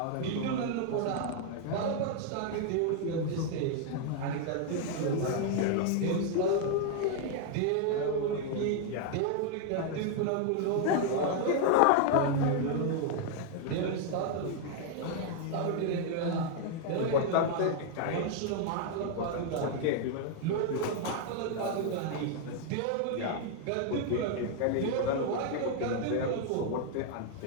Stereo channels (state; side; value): different; both; correlation 0.00